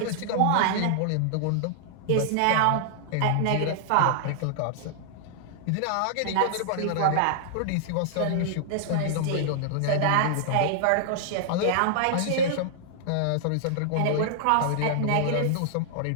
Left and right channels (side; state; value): both; different; correlation -0.01